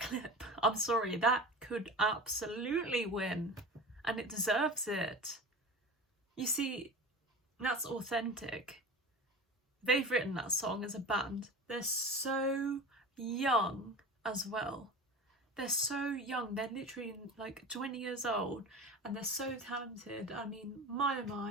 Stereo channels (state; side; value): normal; both; correlation 0.33